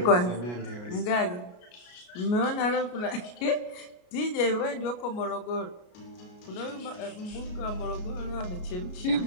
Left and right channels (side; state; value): right; late; 33 ms